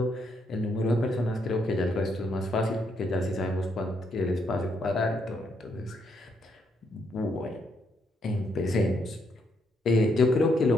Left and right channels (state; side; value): normal; both; correlation 0.75